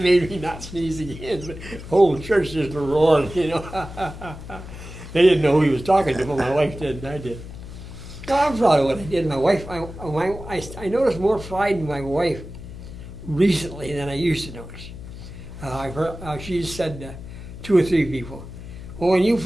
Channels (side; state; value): left; noise; hum, 13 dB below the sound